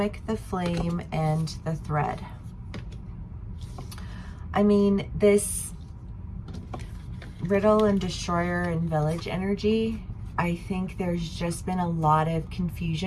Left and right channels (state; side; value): identical; both; correlation 1.00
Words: the Flame, and the Thread. I mean, this Riddle and Destroyer and Village energy, I think there's just been a lot of